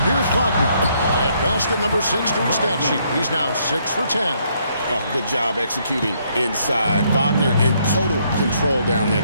here's Wagner. At basket number 6 to his stat sheet. He's now 6 for 10. Oh, good job executing inside. Wagner in total control down there.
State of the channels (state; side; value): inverted; both; correlation -0.71